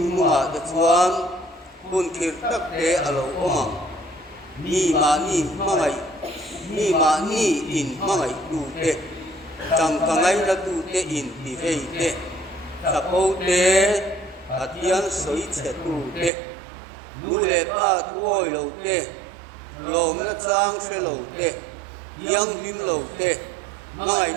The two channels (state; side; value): drops out; left; at 16.3 s